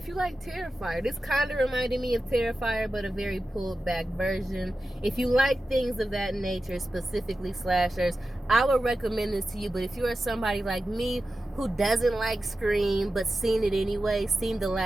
you like Terrifier, this kind of reminded me of Terrifier, but a very pulled back version. If you like things of that nature, specifically slashers, I would recommend this to you. But if you are somebody like me who doesn't like Scream but seen it anyway, seen the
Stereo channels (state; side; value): normal; both; correlation 0.93